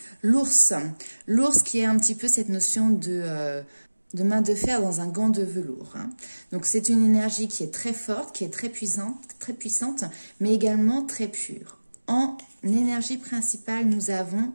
l'ours. L'ours qui est un petit peu cette notion de main de fer dans un gant de velours. Donc, c'est une énergie qui est très forte, qui est très puissante, mais également très pure. En énergie principale, nous avons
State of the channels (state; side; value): inverted; both; correlation -1.00